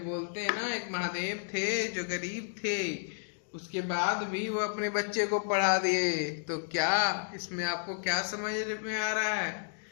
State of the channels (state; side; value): silent; right; digital silence